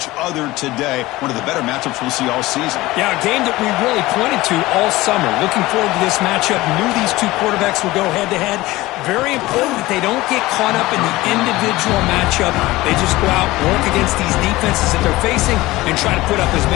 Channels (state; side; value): quieter; right; 18.8 dB